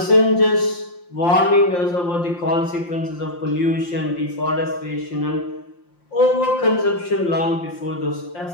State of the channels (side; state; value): right; late; 5.7 ms